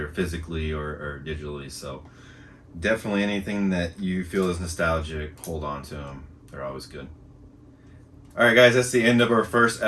physically or digitally. So definitely anything that you feel is nostalgic, hold on to them. They're always good. All right, guys, that's the end of our first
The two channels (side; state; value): both; identical; correlation 1.00